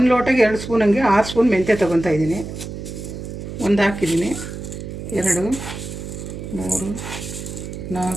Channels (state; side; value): noise; right; hum, 9 dB below the sound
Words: ಲೋಟಗೆ 2 ಸ್ಪೂನ್ ಹಂಗೆ 6 ಸ್ಪೂನ್ ಮೆಂತ್ಯ ತೊಗೊತಾ ಇದ್ದೀನಿ. 1 ಹಾಕಿದ್ದೀನಿ, 2, 3,